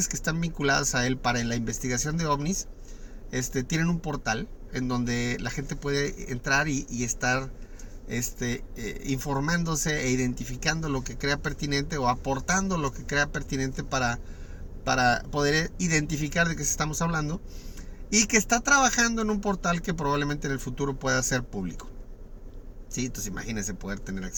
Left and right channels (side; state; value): both; identical; correlation 1.00